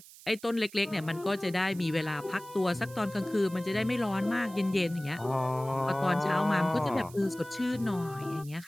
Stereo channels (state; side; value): noise; right; hiss, 20 dB below the sound